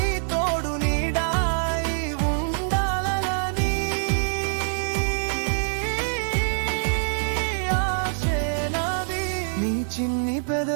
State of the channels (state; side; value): silent; left; 62 dB below the other